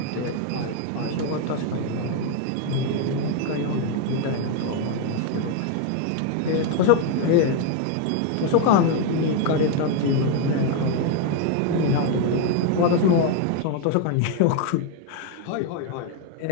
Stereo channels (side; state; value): both; different; correlation 0.01